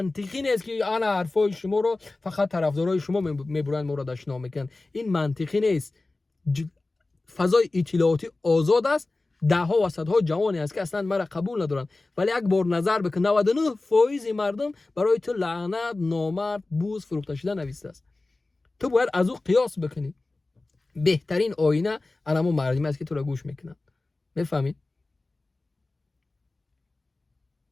نیست که انا حرفای شما رو فقط طرفدارای شما میبرن ما رو دشنام میکنن. این منطقی نیست. فضای اطلاعاتی آزاد است، ده ها و صدها جوانی است که اصلا مرا قبول ندارن، ولی یک بار نظر بکن 99% مردم برای تو لعنت، نامرد، بوز، فروخته شده نوشته است. تو باید از او قیاس بکنی. بهترین آینه انمو مردمی است که تو را گوش میکنن. میفهمی؟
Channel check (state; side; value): quieter; right; 3.2 dB